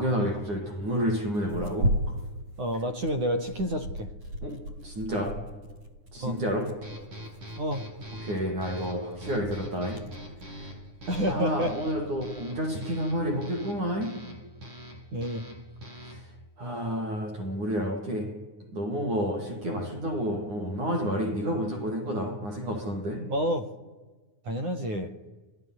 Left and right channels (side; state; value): left; late; 9.7 ms